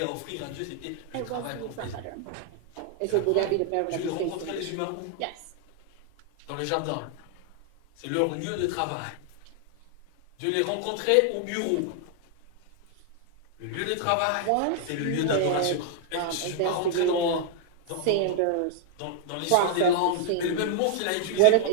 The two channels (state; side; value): different; both; correlation 0.00